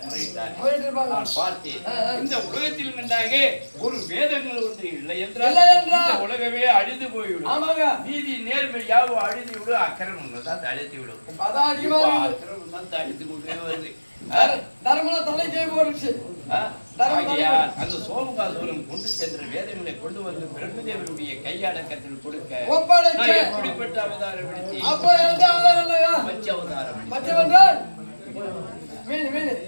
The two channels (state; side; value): inverted; both; correlation -1.00